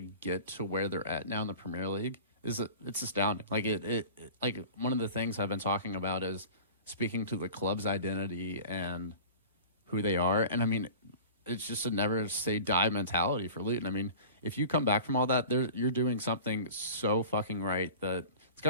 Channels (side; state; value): both; inverted; correlation -0.39